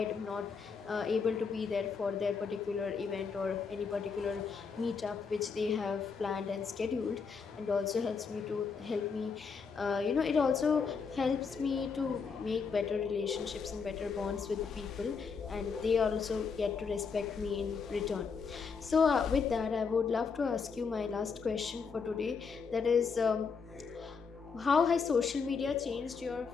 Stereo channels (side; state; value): right; quieter; 5.5 dB